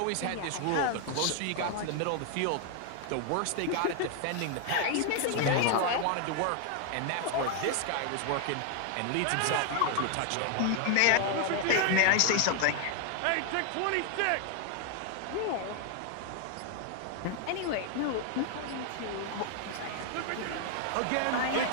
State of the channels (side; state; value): both; different; correlation 0.00